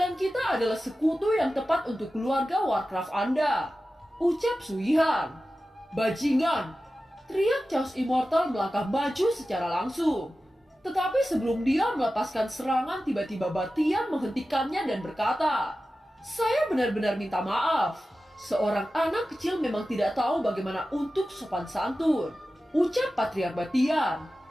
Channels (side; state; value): both; normal; correlation 0.94